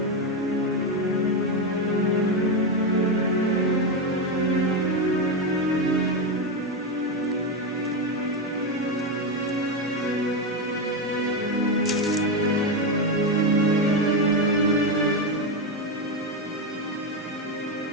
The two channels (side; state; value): both; normal; correlation 0.10